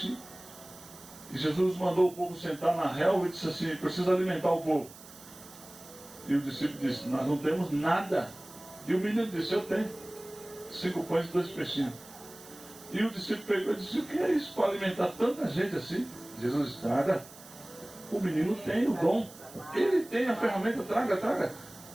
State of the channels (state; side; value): noise; right; hiss, 19 dB below the sound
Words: E Jesus mandou o povo sentar na relva e disse assim: precisa alimentar o povo. E o discípulo disse: nós não temos nada. E o menino disse: eu tenho 5 pães e 2 peixinhos. E o discípulo pegou e disse: o que é isso para alimentar tanta gente assim? Jesus: traga. O menino tem o dom, ele tem a ferramenta, traga.